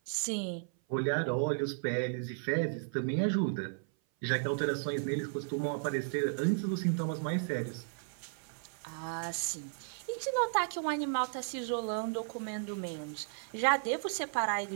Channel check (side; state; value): left; silent; 55 dB below the other